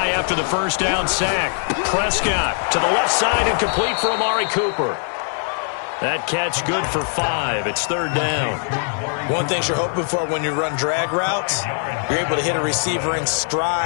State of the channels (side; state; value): right; silent; 62 dB below the other